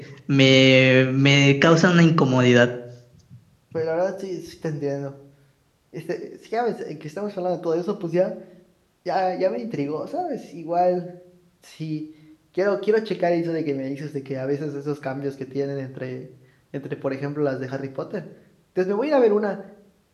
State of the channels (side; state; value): both; identical; correlation 1.00